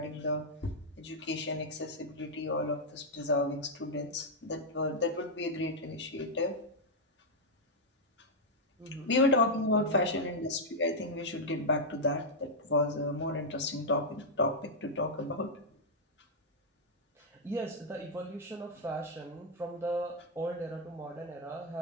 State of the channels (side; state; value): both; normal; correlation -0.03